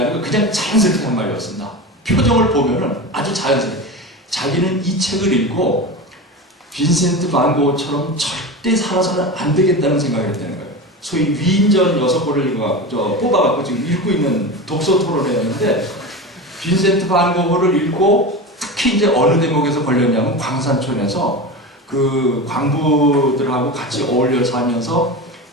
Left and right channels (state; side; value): normal; both; correlation 0.26